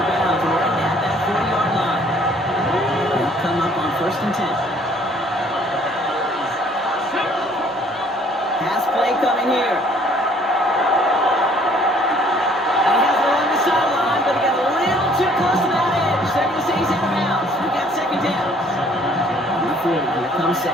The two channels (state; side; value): normal; both; correlation 0.59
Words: bounds right at that 40-yard line. They'll come up on 1st and 10. Pass play coming here. Here comes